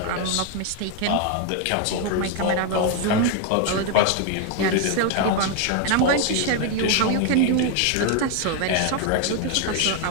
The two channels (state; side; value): different; both; correlation 0.01